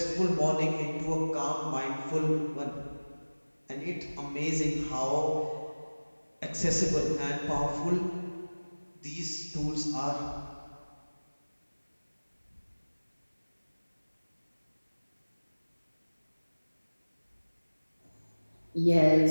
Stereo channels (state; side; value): inverted; both; correlation -1.00